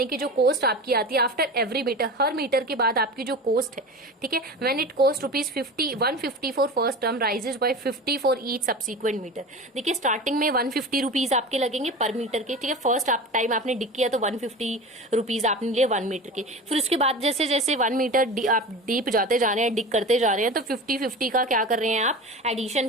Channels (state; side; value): normal; both; correlation 0.31